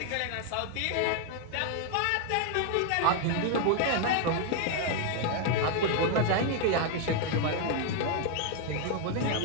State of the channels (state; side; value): different; both; correlation 0.01